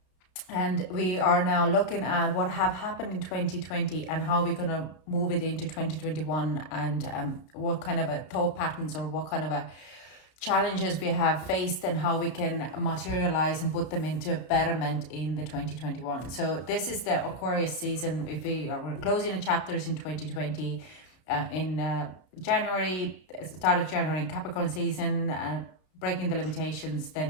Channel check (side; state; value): right; late; 32 ms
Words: And we are now looking at what have happened in 2020 and how we're going to move it into 2021, and what kind of a thought patterns or what kind of a challenges we have faced and how we can materialize and put them into a betterment in the 2021. So this is the Aquarius season. If we're closing the chapters in 2020 in January, start of January in Capricorn season, breaking the limitations,